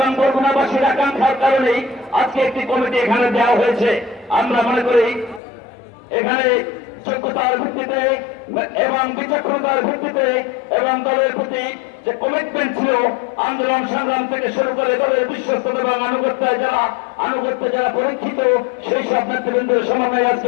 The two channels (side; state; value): right; drops out; at 5.4 s